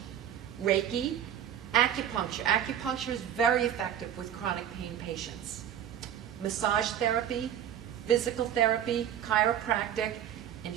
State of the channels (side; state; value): left; quieter; 10.0 dB